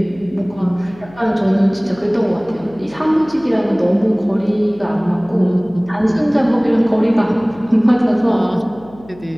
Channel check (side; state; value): left; noise; hum, 22 dB below the sound